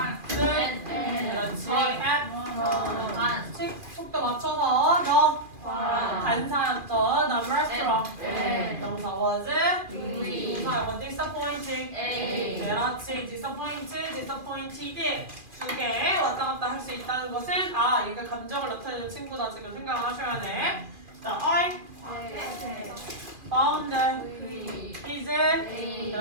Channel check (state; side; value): late; left; 2.4 ms